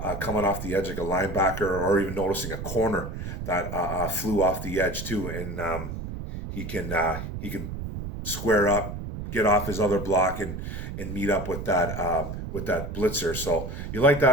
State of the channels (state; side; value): noise; right; rumble, 7 dB below the sound